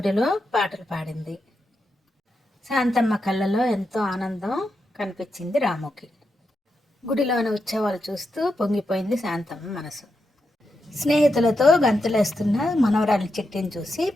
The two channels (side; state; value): both; normal; correlation 0.86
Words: పాటలు పాడింది. శాంతమ్మ కళ్ళలో ఎంతో ఆనందం కనిపించింది రాముకి. గుడిలోని ఉత్సవాలు చూస్తూ పొంగిపోయింది శాంతమ్మ మనసు. స్నేహితులతో గంతులేస్తున్న మనవరాలి చిట్టిని చూసి